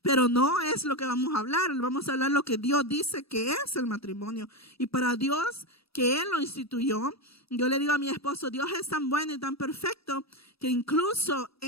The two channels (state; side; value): late; right; 0.77 ms